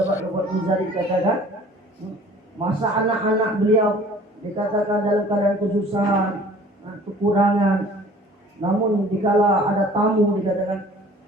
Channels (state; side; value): normal; both; correlation 0.49